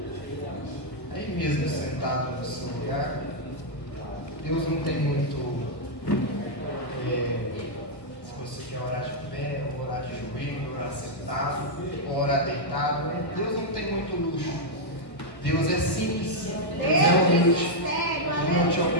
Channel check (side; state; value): right; late; 1.3 ms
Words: aí mesmo sentado no seu lugar. Deus não tem muito. Se você quer orar de pé, ou orar de joelho, orar sentado, ou orar deitado, Deus não tem muito luxo. Deus é simples, Deus é humilde. Ele não te